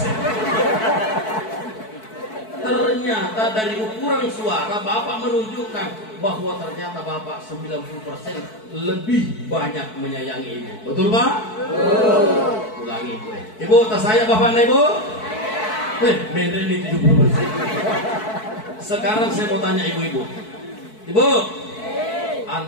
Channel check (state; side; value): late; right; 4.6 ms